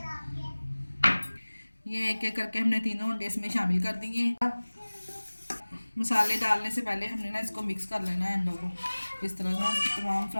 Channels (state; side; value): inverted; both; correlation -1.00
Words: ये एक एक करके हमने तीनों अंडे इसमें शामिल कर दिए। मसाले डालने से पहले हमने ना इसको मिक्स कर लेना है अंडों को, इस तरह से तमाम